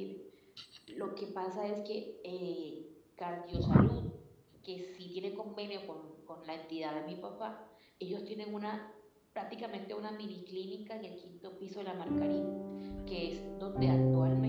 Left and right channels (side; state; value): both; identical; correlation 1.00